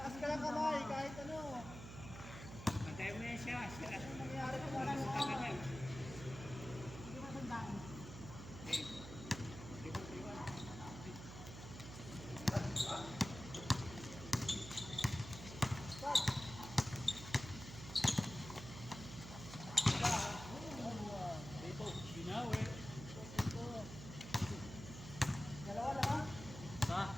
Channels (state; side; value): noise; right; hum, 11 dB below the sound